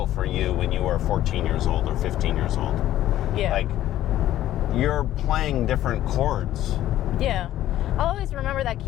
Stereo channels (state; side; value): quieter; right; 13.3 dB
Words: for you when you were 14 years old or 15 years old. Yeah. Like, you're playing different chords. Yeah. I'll always remember that